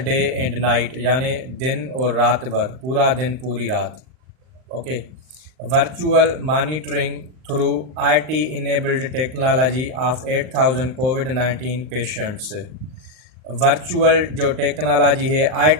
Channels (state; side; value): late; left; 39 ms